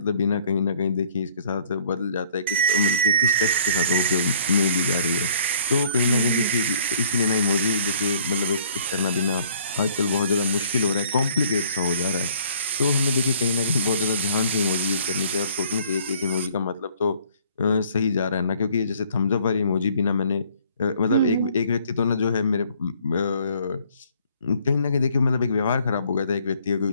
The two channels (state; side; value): inverted; both; correlation -0.58